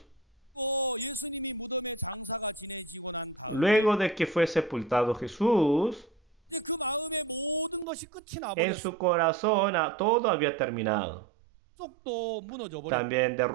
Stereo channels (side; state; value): left; drops out; at 7.9 s